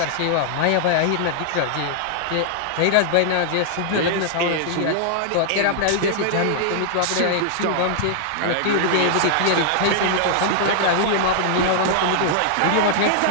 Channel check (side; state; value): both; different; correlation -0.01